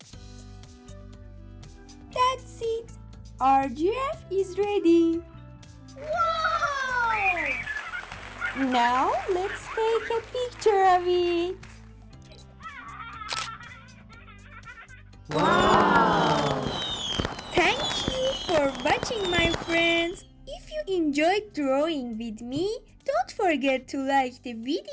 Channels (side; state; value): both; identical; correlation 1.00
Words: That's it! Our giraffe is ready! Wow! Now let's take a picture of it! Wow! Thank you for watching, my friends! If you enjoyed drawing with me, don't forget to like the